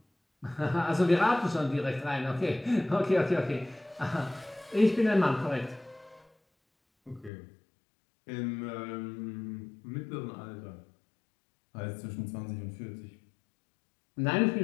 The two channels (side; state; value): right; drops out; at 7.3 s